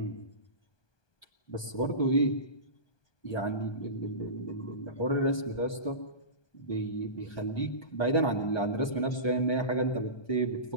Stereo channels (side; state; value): right; late; 1.2 ms